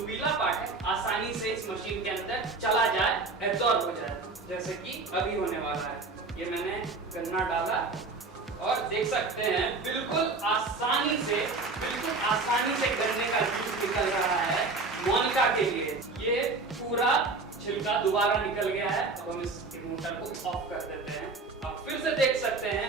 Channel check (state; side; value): quieter; left; 3.8 dB